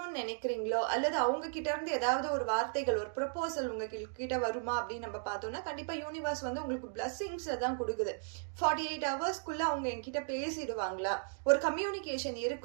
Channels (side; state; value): left; silent; digital silence